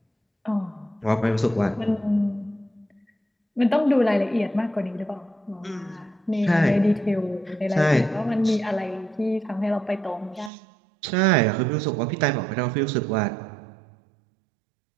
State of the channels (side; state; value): left; drops out; at 10.5 s